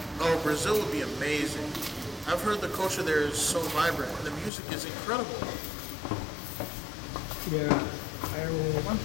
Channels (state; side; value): drops out; right; at 4.5 s